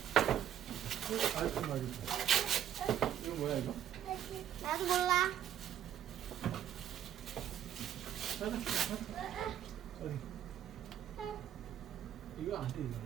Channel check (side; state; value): left; quieter; 10.4 dB